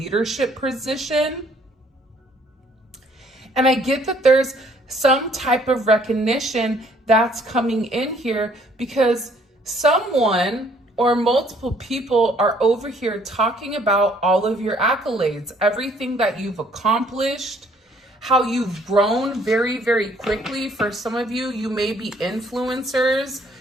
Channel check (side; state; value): both; normal; correlation 0.62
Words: position. And I get that there's some type of recognition that's coming in here because someone or multiple people are over here talking about all of your accolades, everything that you've accomplished, how you've grown very, very quickly. For some of you, you may be influencers.